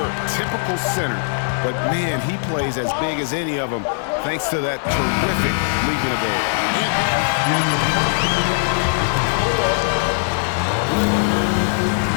typical center, but man, he plays as big as any of them thanks to that terrific leaping ability.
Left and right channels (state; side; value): silent; right; digital silence